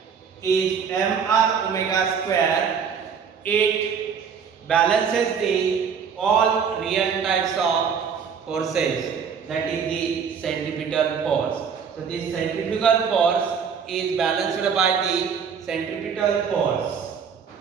is mr omega square. It balances the all real types of forces, that is the centripetal force. So this centrifugal force is balanced by the centripetal force.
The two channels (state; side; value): quieter; left; 6.7 dB